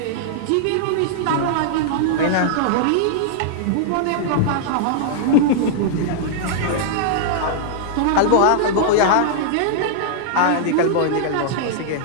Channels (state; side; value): different; both; correlation -0.01